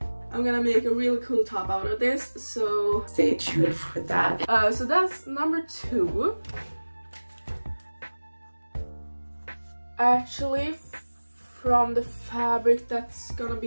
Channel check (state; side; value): inverted; both; correlation -1.00